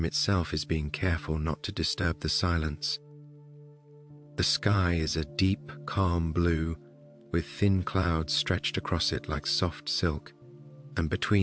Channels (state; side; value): identical; both; correlation 1.00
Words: itself is being careful not to disturb the silence. The sky is a deep, calm blue, with thin clouds stretched across it like soft silk, and